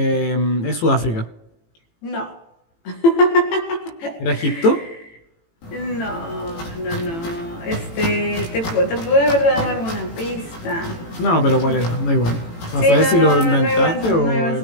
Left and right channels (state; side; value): late; right; 18 ms